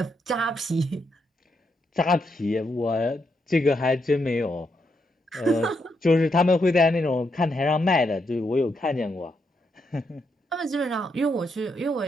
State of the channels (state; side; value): normal; both; correlation 0.80